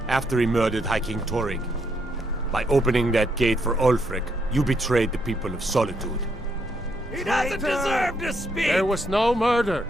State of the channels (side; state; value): both; normal; correlation 0.76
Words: after he murdered High King Torrig. By opening that gate for Ulfric, you betrayed the people of Solitude. He doesn't deserve to speak! There was no murder.